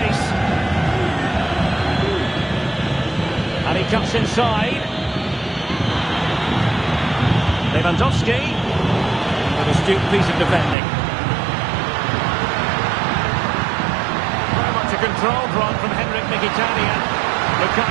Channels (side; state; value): left; drops out; at 10.8 s